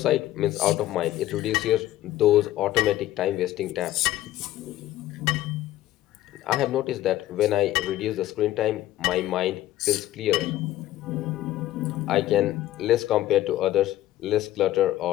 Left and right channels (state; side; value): quieter; right; 14.5 dB